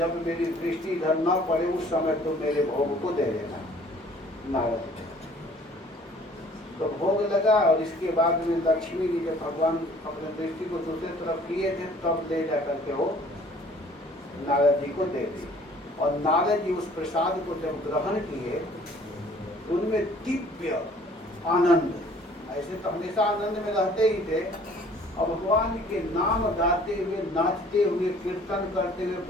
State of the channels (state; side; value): normal; both; correlation 0.54